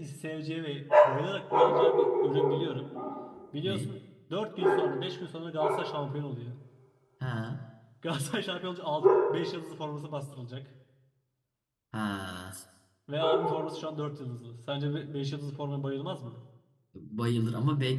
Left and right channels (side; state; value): both; identical; correlation 1.00